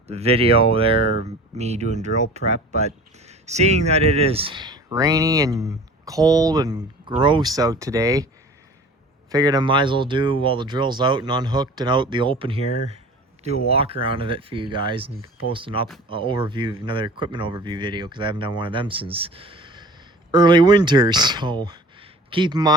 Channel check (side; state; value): both; normal; correlation 0.42